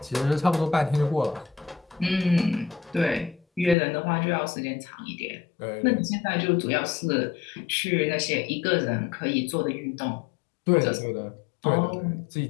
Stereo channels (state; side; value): drops out; right; at 3.8 s